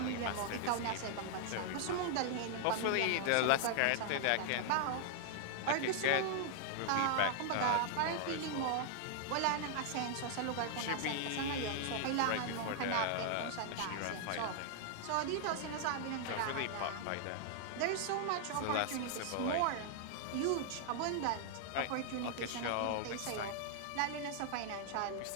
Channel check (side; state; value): both; different; correlation -0.01